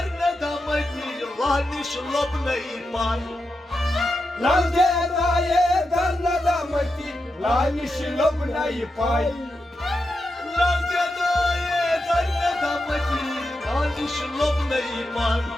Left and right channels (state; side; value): normal; both; correlation 0.88